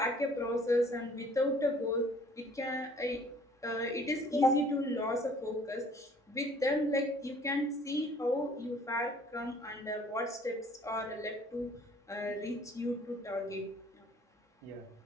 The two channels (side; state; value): both; normal; correlation 0.56